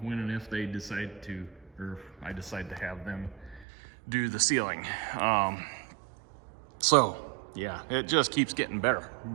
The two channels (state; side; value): drops out; left; at 3.7 s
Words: if they decide to, or if I decide to have them do the ceiling. So yeah, it just keeps getting better.